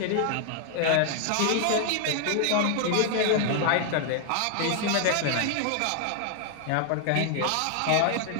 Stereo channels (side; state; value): both; different; correlation 0.00